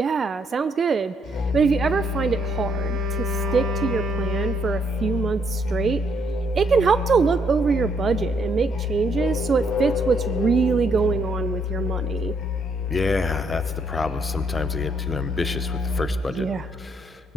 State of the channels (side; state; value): both; normal; correlation 0.72